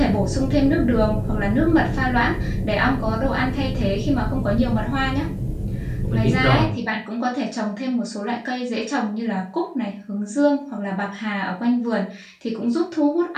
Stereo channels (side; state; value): both; identical; correlation 1.00